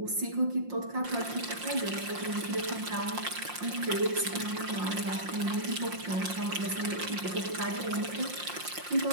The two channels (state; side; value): late; left; 5.6 ms